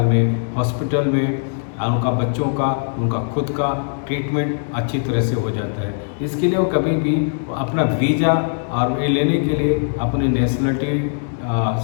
में, हॉस्पिटल में उनका बच्चों का, उनका खुद का ट्रीटमेंट अच्छी तरह से हो जाता है। इसके लिए वो कभी भी अपना वीज़ा और ये लेने के लिए अपनी नेशनलिटी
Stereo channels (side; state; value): right; silent; digital silence